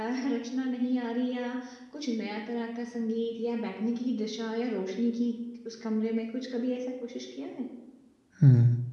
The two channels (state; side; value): identical; both; correlation 1.00